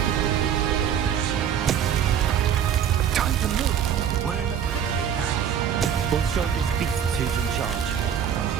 Time to move. We're in the thick of it now. We'll show this beast who's in charge.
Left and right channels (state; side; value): quieter; left; 8.7 dB